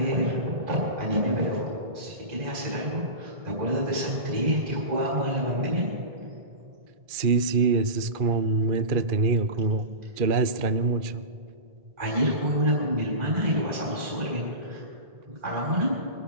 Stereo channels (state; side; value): late; left; 2.4 ms